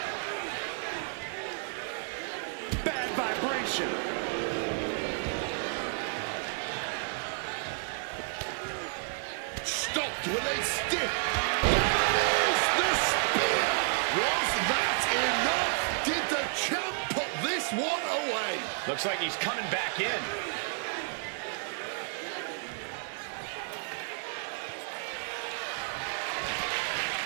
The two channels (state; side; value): silent; left; 57 dB below the other